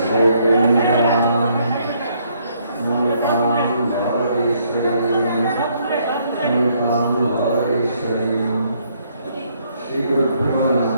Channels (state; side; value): inverted; both; correlation -0.69